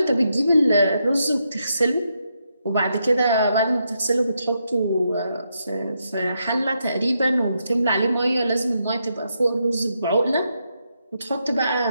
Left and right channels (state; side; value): inverted; both; correlation -0.81